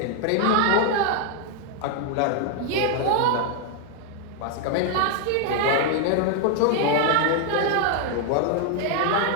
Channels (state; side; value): different; both; correlation 0.00